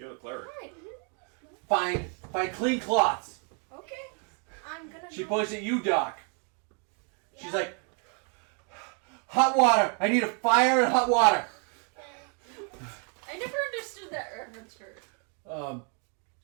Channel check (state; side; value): quieter; left; 39.6 dB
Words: the cleric. Find clean cloths. Okay. I'm gonna. She go. points at you, Doc. She's like, "Hot water. I need a fire and hot water." hurts her.